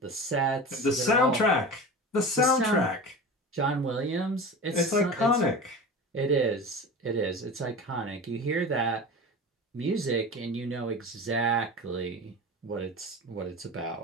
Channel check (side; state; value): both; normal; correlation 0.31